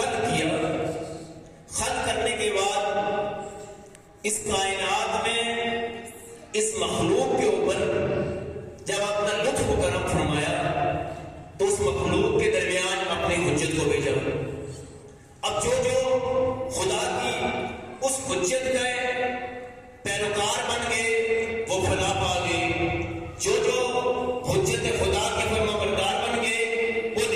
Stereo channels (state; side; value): identical; both; correlation 1.00